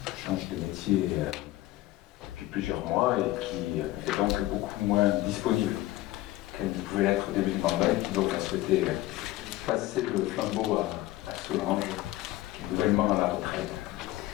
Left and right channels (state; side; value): quieter; right; 16.6 dB